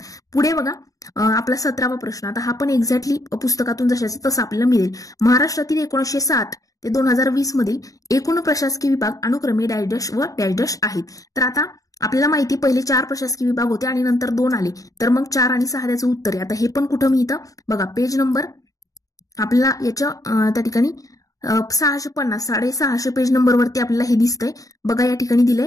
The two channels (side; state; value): right; late; 0.17 ms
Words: पुढे बघा आपला 17वा प्रश्न. आता हा पण एक्झॅक्टली पुस्तकातून जशाचं तसं आपल्याला मिळेल. महाराष्ट्रातील 1960 ते 2020 मधील एकूण प्रशासकीय विभाग अनुक्रमे डॅश डॅश व डॅश डॅश आहेत. तर आता आपल्याला माहिती पहिले 4 प्रशासकीय विभाग होते आणि नंतर 2 आले, तर मग 4 आणि 6 त्याचं उत्तर आहे. आता हे पण कुठं मिळतं बघा, पेज नंबर आपल्याला याच्या त्या ठिकाणी 650 650 पेज नंबरवरती आपल्याला हे दिसतंय बघा. या ठिकाणी